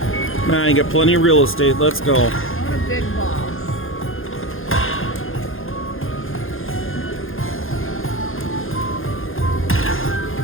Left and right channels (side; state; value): right; late; 0.60 ms